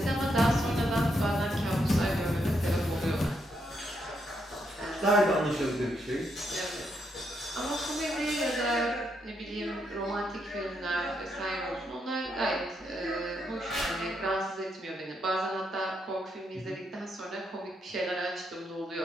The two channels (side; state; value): both; normal; correlation 0.78